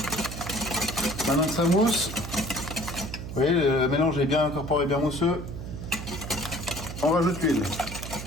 Maintenant que ça mousse, vous voyez, le mélange est bien incorporé, bien mousseux. On rajoute l'huile.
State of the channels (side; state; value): right; noise; hum, 9 dB below the sound